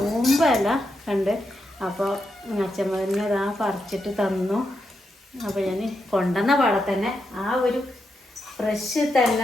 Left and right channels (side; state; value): both; normal; correlation 0.84